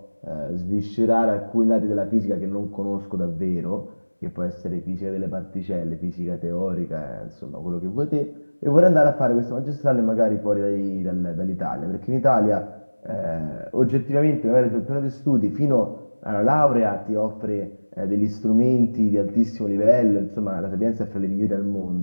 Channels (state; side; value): inverted; both; correlation -1.00